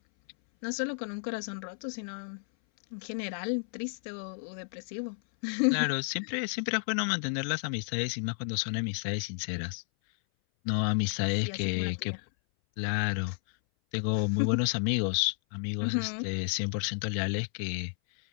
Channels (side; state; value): right; silent; 57 dB below the other